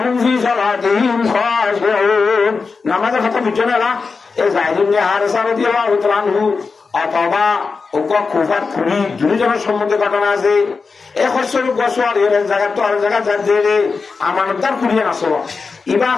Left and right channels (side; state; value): right; quieter; 4.7 dB